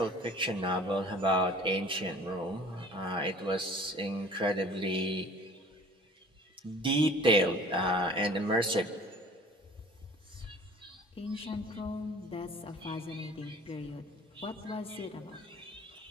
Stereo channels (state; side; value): normal; both; correlation 0.47